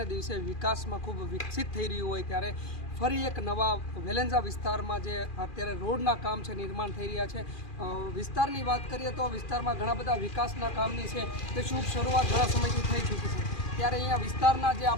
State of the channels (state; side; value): late; right; 2.4 ms